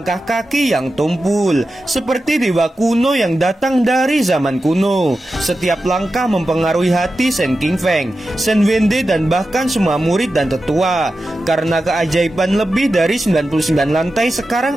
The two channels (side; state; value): both; normal; correlation 0.92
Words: kaki yang tumpul, seperti dewa kuno yang datang dari zaman kuno. Setiap langkah mempengaruhi hati Shen Qingfeng, Shen Wende, dan bahkan semua murid dan tetua. Karena keajaiban lebih dari 99 lantai, sekarang